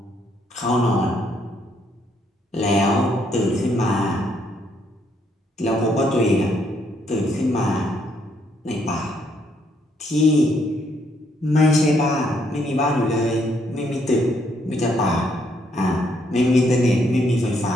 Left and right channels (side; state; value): both; normal; correlation 0.72